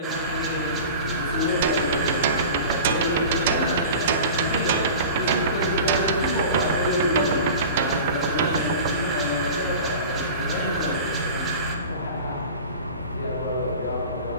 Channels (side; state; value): both; inverted; correlation -0.37